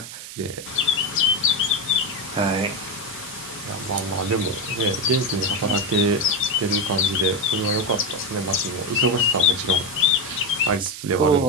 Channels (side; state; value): right; noise; hiss, 12 dB below the sound